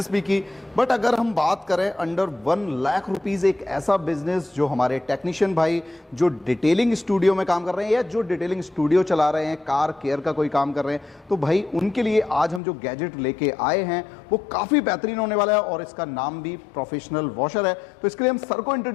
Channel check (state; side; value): drops out; right; at 12.6 s